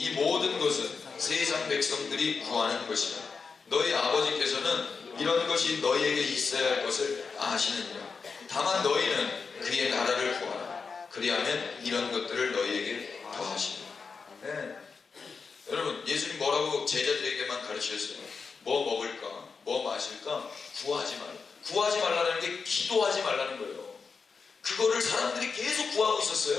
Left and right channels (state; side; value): quieter; right; 5.1 dB